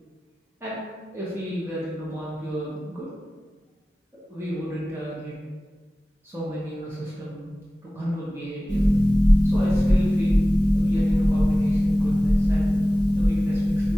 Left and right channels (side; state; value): both; normal; correlation 0.97